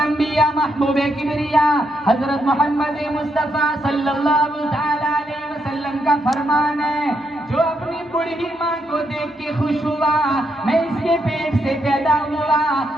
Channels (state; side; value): normal; both; correlation 0.79